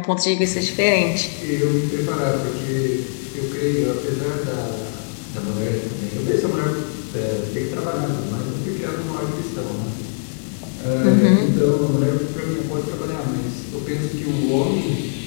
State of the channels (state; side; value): silent; right; digital silence